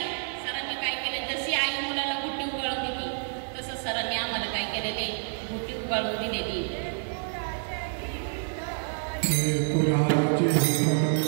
सरांनी काय केले, जशी आई मुलाला गुट्टी उगाळून दिली तसं सरांनी आम्हाला काय केलेले गुट्टी उगाळून दिलेली.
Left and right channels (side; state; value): left; silent; 59 dB below the other